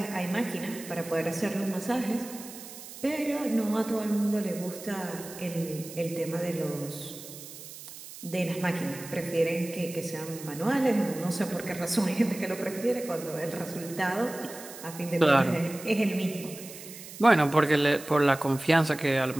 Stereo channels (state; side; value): noise; right; hiss, 14 dB below the sound